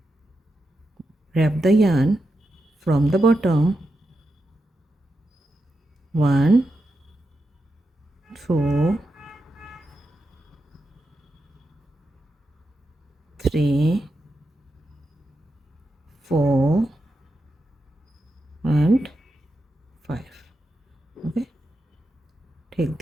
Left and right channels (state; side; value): normal; both; correlation 0.87